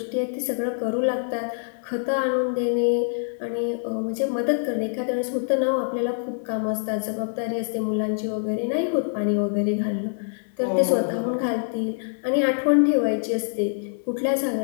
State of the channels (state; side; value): silent; right; 62 dB below the other